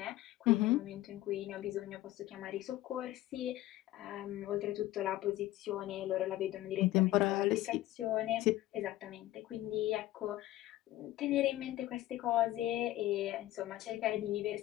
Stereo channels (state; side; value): quieter; right; 15.6 dB